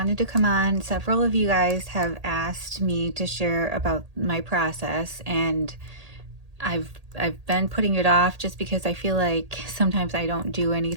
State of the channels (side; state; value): left; late; 1.8 ms